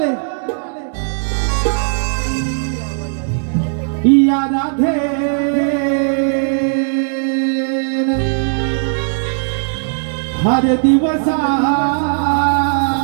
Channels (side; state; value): left; silent; digital silence